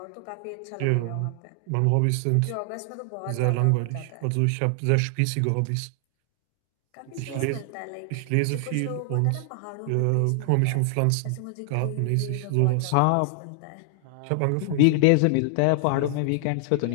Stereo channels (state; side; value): different; both; correlation 0.00